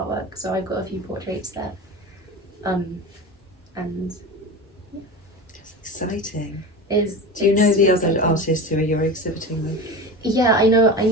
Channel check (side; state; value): both; normal; correlation 0.29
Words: So I've got a few portraits there, and yeah. That's exciting. Do you know the other artists who you're exhibiting with? Yeah, I know.